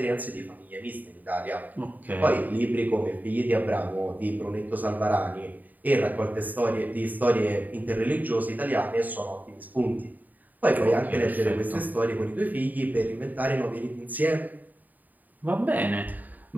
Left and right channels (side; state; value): left; late; 0.084 ms